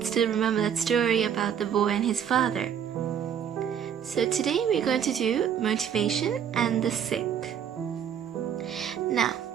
still remember that story about the boy and his father. So today we're going to do motivation and the sick. Now,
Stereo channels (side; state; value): left; quieter; 8.5 dB